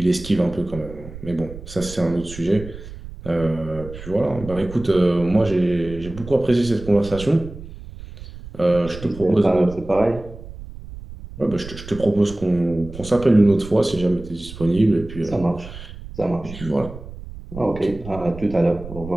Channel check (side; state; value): right; noise; rumble, 14 dB below the sound